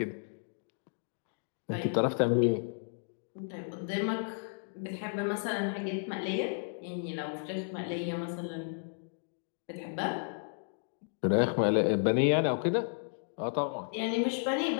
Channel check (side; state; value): right; silent; digital silence